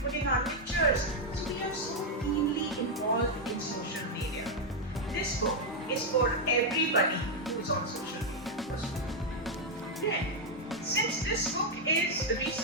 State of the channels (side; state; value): both; normal; correlation -0.01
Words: our pictures. So we are so keenly involved in social media. This book is for everybody who's on social media. Then, since this book is